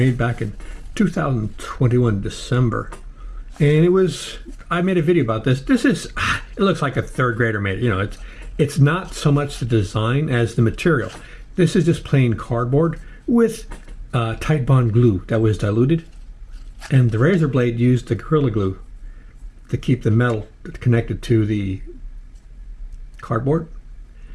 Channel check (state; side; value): identical; both; correlation 1.00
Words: back in 2021 December. And I made a video about this. It looks like a third grader made it. You know, it's not so much the design as the material. This is just plain cardboard with tight bond glue that was diluted. And the razor blade used the Gorilla Glue to keep the metal connected to the cardboard.